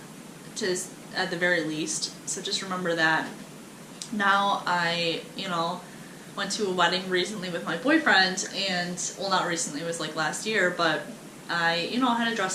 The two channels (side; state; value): both; identical; correlation 1.00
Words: at the very least. So just remember that. Now I, you know, went to a wedding recently with my boyfriend, and, well, not recently, it was like last year, but I, you know, had a